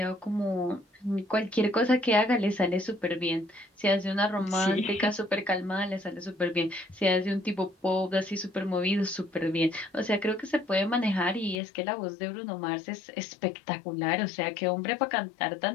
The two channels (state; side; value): drops out; right; at 11.6 s